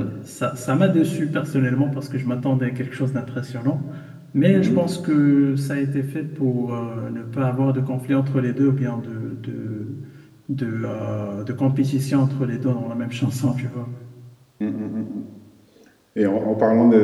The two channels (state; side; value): identical; both; correlation 1.00